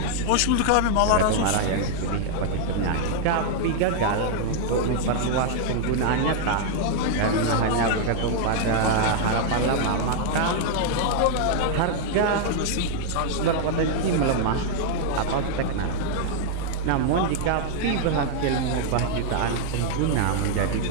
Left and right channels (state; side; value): different; both; correlation -0.01